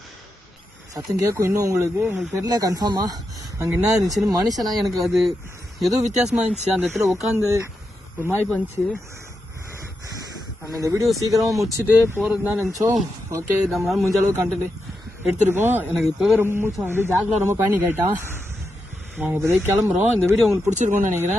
சத்தம் கேட்கும் இன்னும் உங்களுக்கு தெரியல கன்ஃபார்மா அங்கே என்ன இருந்துச்சுன்னு. மனுஷனா எனக்கு அது ஏதோ வித்தியாசமா இருந்துச்சு. அந்த இடத்துல உட்காந்து ஒரு மாதிரி பண்ணிச்சு. நம்ம இந்த வீடியோ சீக்கிரமாக முடிச்சுட்டு போகிறது தான் நினச்சோம். ஓகே, நம்மளால முடிஞ்ச அளவுக்கு கண்டென்ட் எடுத்துருக்கோம். எனக்கு இப்போவே ரொம்ப மூச்சு வந்து ஜாக்லாம் ரொம்ப பேனிக் ஆகிட்டான். நாங்கள் இப்போதைக்கு கிளம்புறோம். இந்த வீடியோ உங்களுக்கு பிடிச்சிருக்கோன்னு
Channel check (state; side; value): normal; both; correlation 0.86